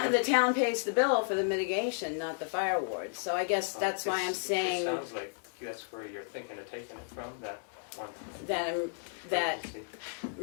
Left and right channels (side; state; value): right; silent; digital silence